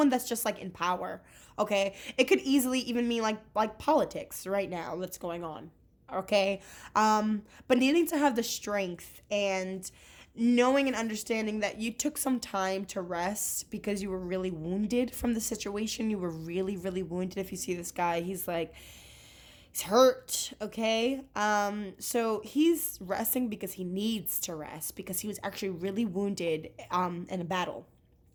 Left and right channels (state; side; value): identical; both; correlation 1.00